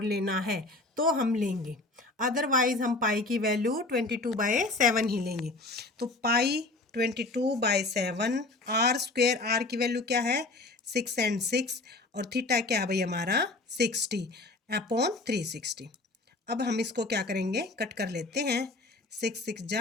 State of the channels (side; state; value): right; quieter; 3.1 dB